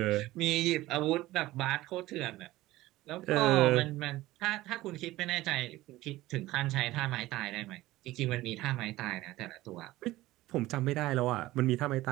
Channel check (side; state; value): left; quieter; 17.3 dB